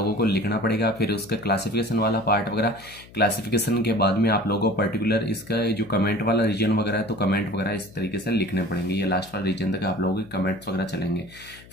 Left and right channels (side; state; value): left; noise; hum, 22 dB below the sound